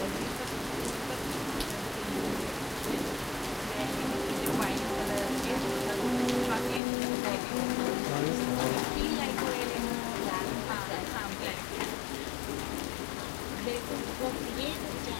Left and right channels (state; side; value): drops out; right; at 6.8 s